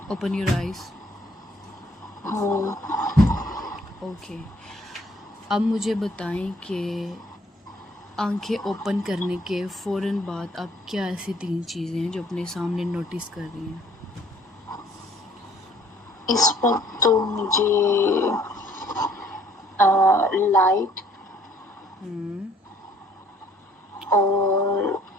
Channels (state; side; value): normal; both; correlation 0.60